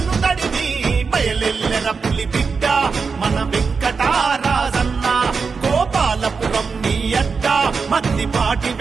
తడివి బయలెల్లెర పులి బిడ్డ మన వెంకటరాజన్న గోపాలపురం నీ అడ్డ మద్దిపాటి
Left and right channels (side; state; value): left; quieter; 5.1 dB